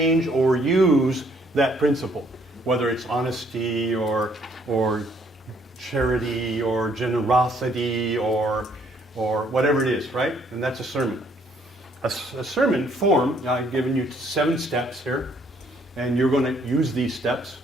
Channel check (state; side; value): normal; both; correlation 0.65